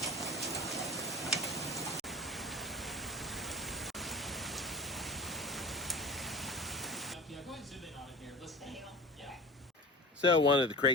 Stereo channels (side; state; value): both; normal; correlation 0.36